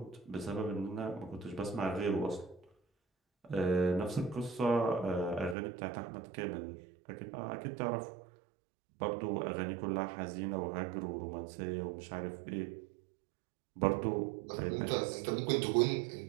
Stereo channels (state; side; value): drops out; left; at 5.6 s